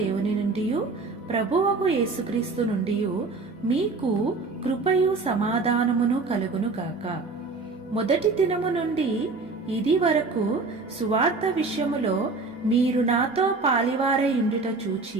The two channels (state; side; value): quieter; left; 3.9 dB